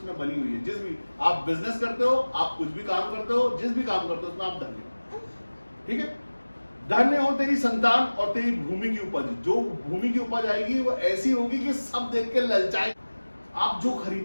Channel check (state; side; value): inverted; both; correlation -1.00